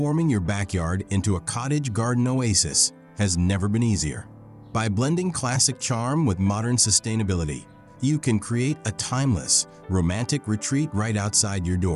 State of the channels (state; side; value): identical; both; correlation 1.00